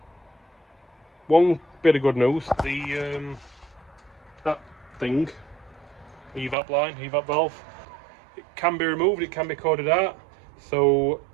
one bit of good news, that thing, evap line, evap valve, it can be removed, it can be coded out. So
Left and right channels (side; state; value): left; drops out; at 6.6 s